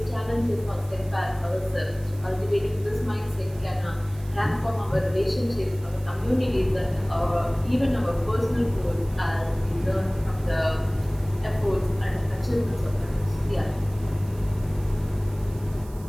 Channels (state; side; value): noise; right; hiss, 23 dB below the sound